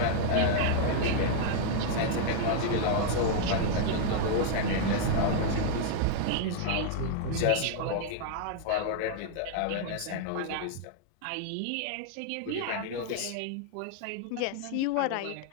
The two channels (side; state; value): both; different; correlation -0.01